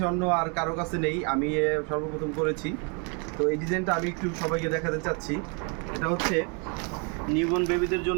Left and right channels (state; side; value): quieter; left; 35.8 dB